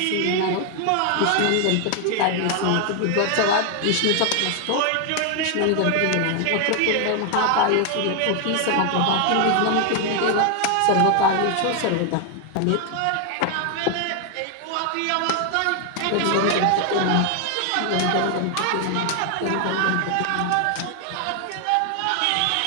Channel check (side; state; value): both; different; correlation 0.00